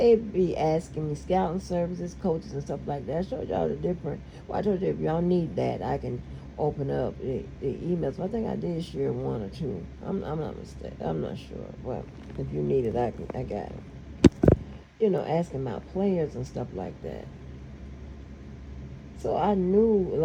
be asking me scouting services, coaches, and stuff like that. I showed y'all the different. Well, I told you if y'all need that, I can open up the emails. I think I did share one or two. I'm not mistaken. I'm not sure. Well, if you need it, I got it. Asking about players and stuff like that. So I knew a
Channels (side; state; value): both; identical; correlation 1.00